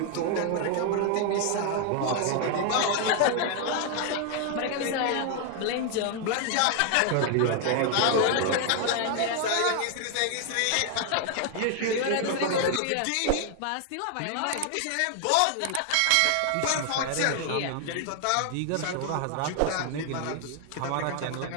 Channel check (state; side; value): different; both; correlation 0.00